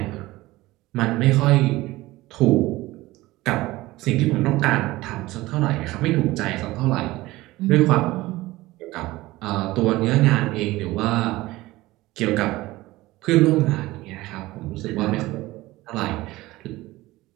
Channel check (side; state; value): left; quieter; 18.7 dB